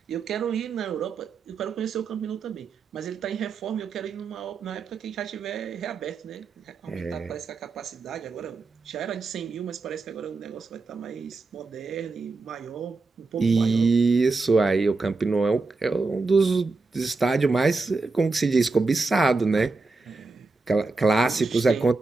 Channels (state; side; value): quieter; left; 3.8 dB